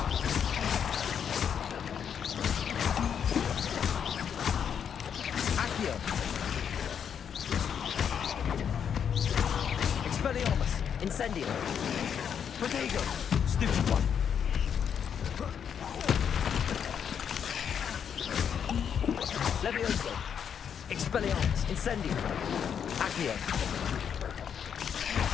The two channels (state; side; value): quieter; right; 7.9 dB